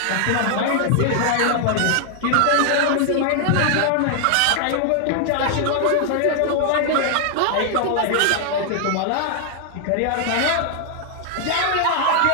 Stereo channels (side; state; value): both; different; correlation 0.00